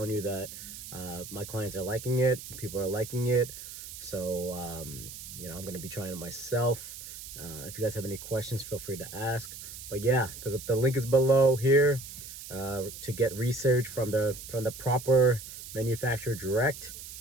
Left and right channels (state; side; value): noise; right; hiss, 12 dB below the sound